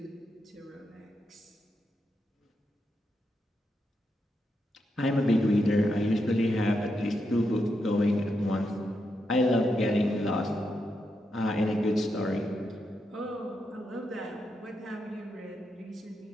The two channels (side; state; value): both; normal; correlation 0.84